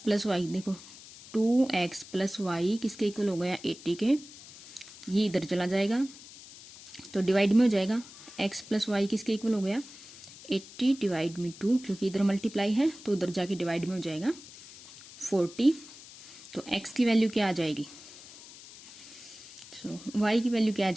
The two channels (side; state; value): left; noise; hiss, 18 dB below the sound